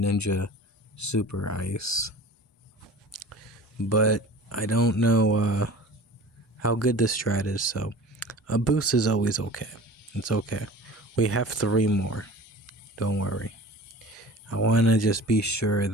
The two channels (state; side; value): normal; both; correlation 0.40